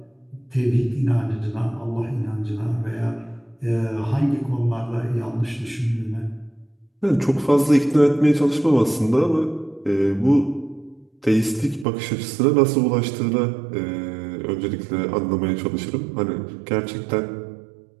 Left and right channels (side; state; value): left; drops out; at 11.9 s